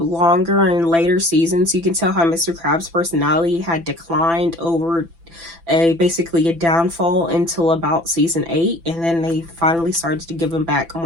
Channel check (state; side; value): late; left; 6.0 ms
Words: and later seasons, you can tell how Mr. Krabs' personality had declined over basically a downfall until about season 8, and then they finally started to give him back